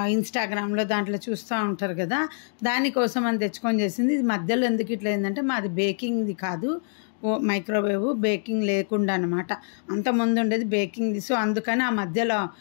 ఇన్స్టాగ్రామ్లో దాంట్లో చూస్తూ ఉంటారు కదా, దానికోసం అని తెచ్చుకొని చేసింది. ఇది మధ్యలో ఎందుకు ఇట్లా ఏంటంటే మాది బేకింగ్ది కాదు, మైక్రోవేవ్ బేకింగ్ లేకుండా అనమాట. అంతకుముందు ఉండేది బేకింగ్ది. సో అందుకని ఆ మధ్యలో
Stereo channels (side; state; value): right; silent; digital silence